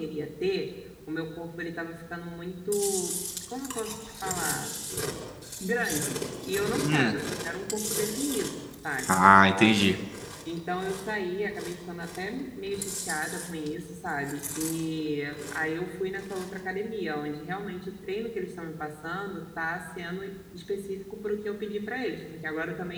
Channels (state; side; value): identical; both; correlation 1.00